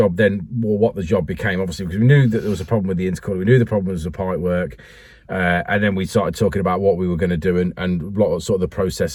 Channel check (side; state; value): both; identical; correlation 1.00